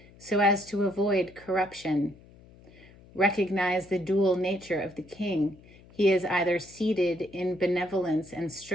so as to avoid corruption. Recognize the dual nature of the King. He is either seated in benevolence and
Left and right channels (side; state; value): left; noise; hum, 24 dB below the sound